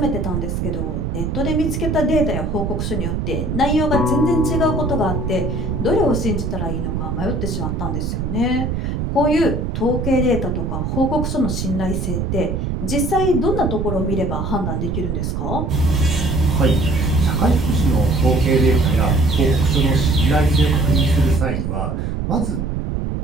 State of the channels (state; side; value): noise; right; rumble, 2 dB below the sound